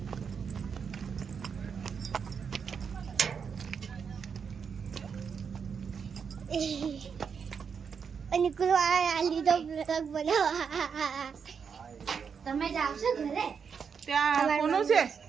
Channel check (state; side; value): quieter; left; 6.4 dB